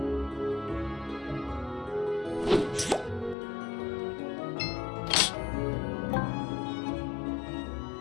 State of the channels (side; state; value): right; drops out; at 3.4 s